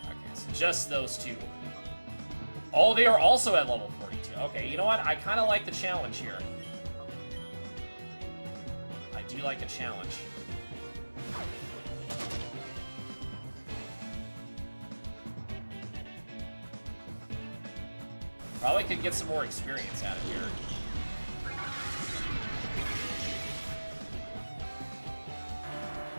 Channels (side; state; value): both; inverted; correlation -1.00